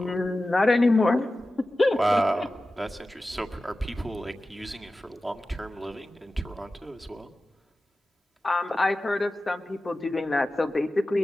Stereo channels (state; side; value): normal; both; correlation 0.95